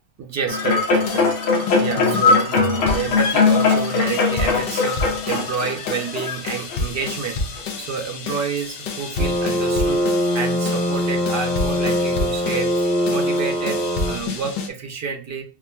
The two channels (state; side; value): late; right; 2.7 ms